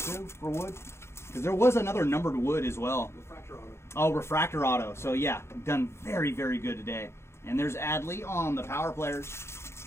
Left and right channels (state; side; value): late; right; 0.13 ms